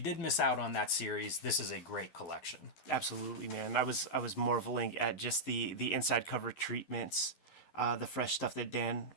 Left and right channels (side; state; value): right; late; 12 ms